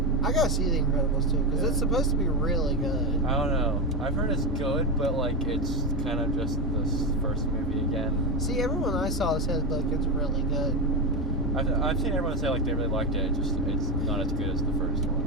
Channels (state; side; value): normal; both; correlation 0.13